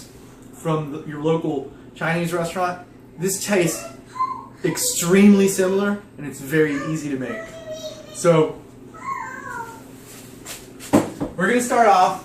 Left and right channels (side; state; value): both; identical; correlation 1.00